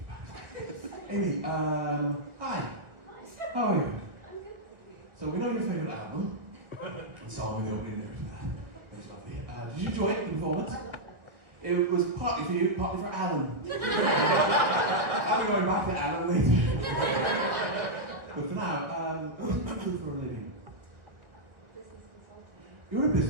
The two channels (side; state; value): left; late; 1.5 ms